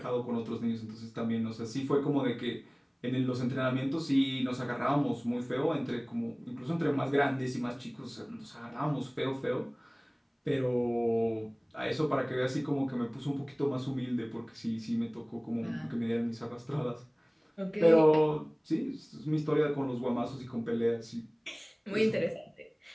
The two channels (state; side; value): identical; both; correlation 1.00